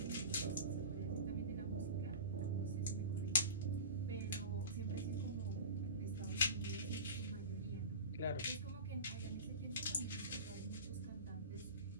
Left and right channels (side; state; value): both; inverted; correlation -0.32